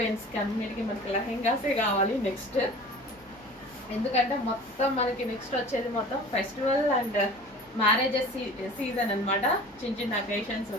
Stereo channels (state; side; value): normal; both; correlation 0.41